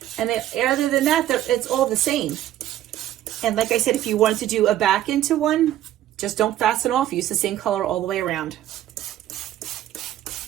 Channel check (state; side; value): quieter; left; 12.8 dB